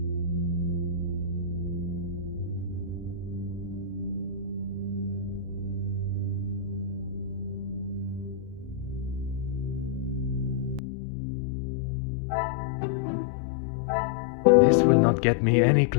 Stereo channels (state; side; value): drops out; right; at 10.8 s